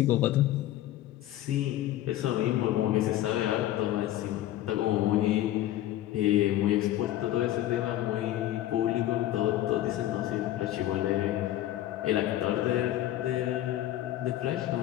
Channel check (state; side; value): quieter; right; 13.8 dB